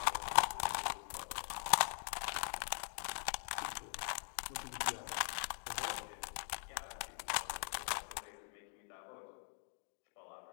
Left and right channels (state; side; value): silent; right; digital silence